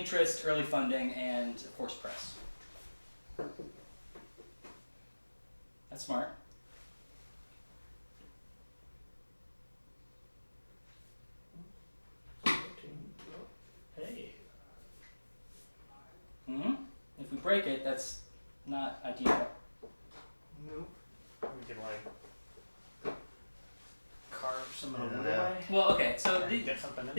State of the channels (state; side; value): inverted; both; correlation -1.00